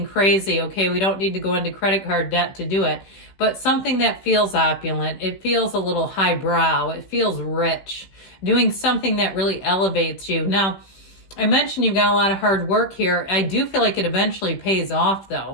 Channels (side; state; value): right; late; 15 ms